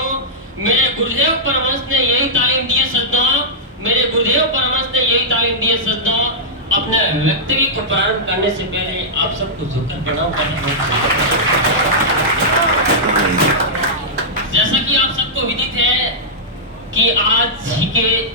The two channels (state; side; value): normal; both; correlation -0.11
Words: मेरे गुरुदेव परमहंस ने यही तालीम दी है सज्जनों, मेरे गुरुदेव परमहंस ने यही तालीम दी है सज्जनों। अपने व्यक्तित्व को प्रारंभ करने से पहले आप सबको झुककर प्रणाम करना है। जैसा कि आप सबको विदित है कि आज ही के